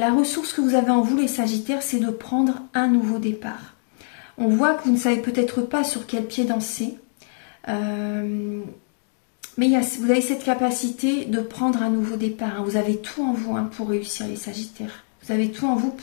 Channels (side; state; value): right; silent; digital silence